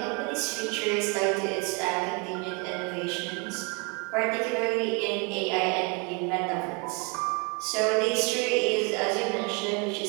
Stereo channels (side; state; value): left; quieter; 32.7 dB